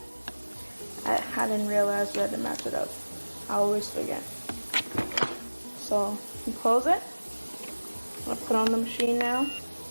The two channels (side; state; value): both; inverted; correlation -1.00